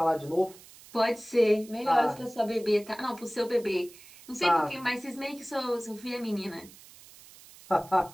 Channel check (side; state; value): right; noise; hiss, 21 dB below the sound